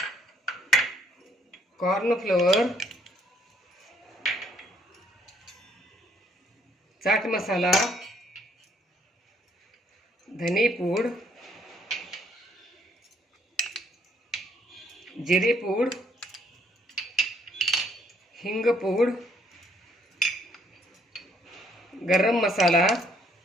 कॉर्नफ्लोअर, चाट मसाला, धने पूड, जिरे पूड, हिंग पूड, गरम मसाला,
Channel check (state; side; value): normal; both; correlation 0.67